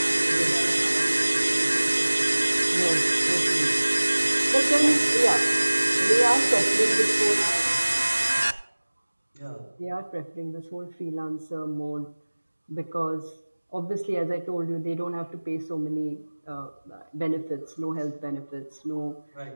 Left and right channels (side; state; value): both; inverted; correlation -1.00